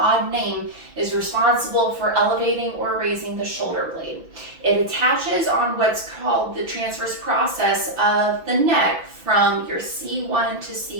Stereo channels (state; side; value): late; left; 6.0 ms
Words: name, is responsible for elevating or raising the shoulder blade. It attaches on what's called the transverse process of the neck from your C1 to